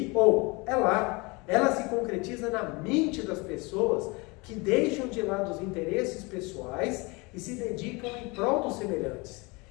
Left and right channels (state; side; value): quieter; right; 26.7 dB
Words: ou é lá. Ela se concretiza na mente das pessoas que deixam de lado os interesses pessoais e se dedicam em prol dos semelhantes,